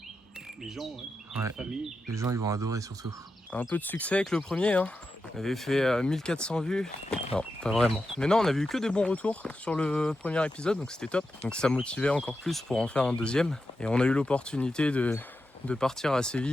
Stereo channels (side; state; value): both; normal; correlation 0.89